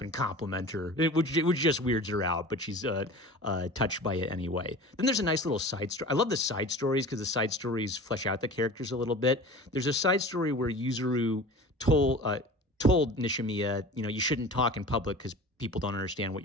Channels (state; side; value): normal; both; correlation 0.38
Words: and compliment her, which just weirds her out, but she's touched by it anyway. Then there's a nice little side story. I love the side stories because the side stories flesh out the characters a little bit. There's a side story where Yuzuru told Nishimiya, you shouldn't talk in public because people don't understand what